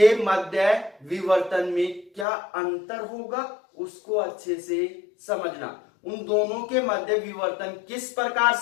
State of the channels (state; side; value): drops out; right; at 2.2 s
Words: मध्य विवर्तन में क्या अंतर होगा उसको अच्छे से समझना। उन दोनों के मध्य विवर्तन किस प्रकार